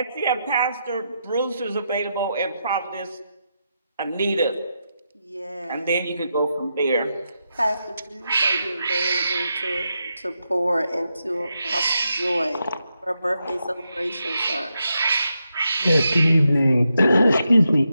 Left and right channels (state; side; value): inverted; both; correlation -0.85